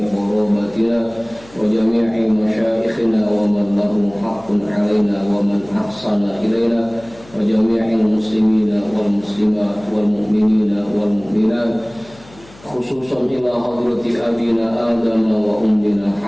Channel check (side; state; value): left; noise; hum, 23 dB below the sound